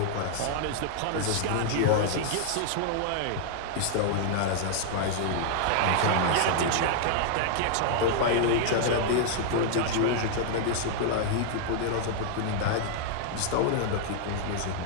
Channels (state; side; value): different; both; correlation -0.01